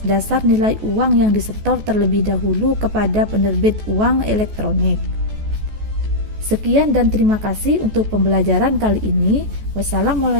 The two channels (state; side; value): late; left; 14 ms